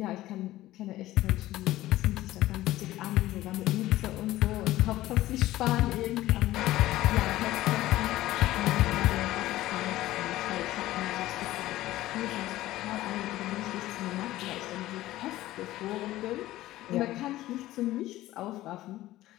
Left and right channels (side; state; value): right; quieter; 15.9 dB